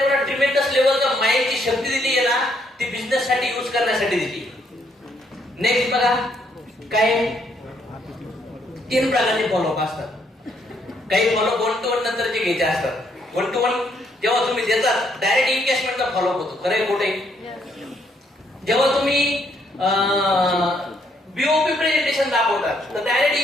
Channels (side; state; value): both; normal; correlation 0.71